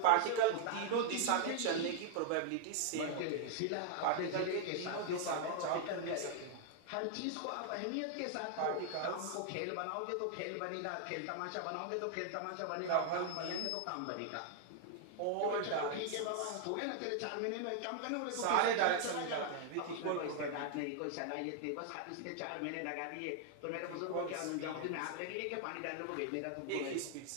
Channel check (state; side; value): different; both; correlation 0.00